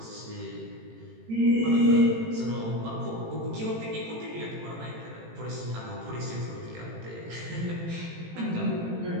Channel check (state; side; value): late; left; 18 ms